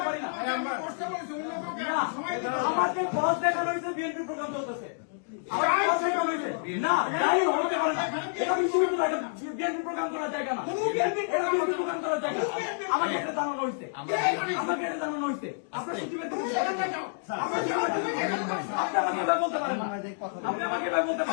পারি না। আমাকে বস দেখানো হয়েছে, বিএনপি প্রোগ্রাম চলতেছে। না, তাই হতে পারে না। এটা বিশ্ববিদ্যালয়, এটা বিএনপি প্রোগ্রাম করার জায়গা না, এটা বিএনপি প্রোগ্রাম করার জায়গা। আমাকে এটা জানানো হয়েছে, আমাকে এটা জানানো হয়েছে। আপনার সচিবের আপনি আমাকে এভাবে বলতে পারেন না, আপনি আমাকে এভাবে বলতে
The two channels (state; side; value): silent; right; digital silence